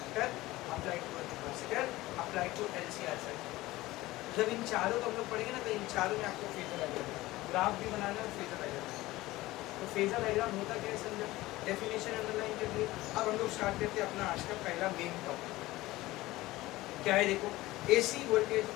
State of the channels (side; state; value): right; quieter; 18.3 dB